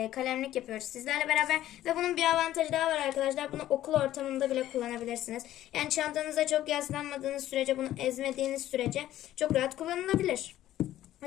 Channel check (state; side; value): quieter; right; 13.4 dB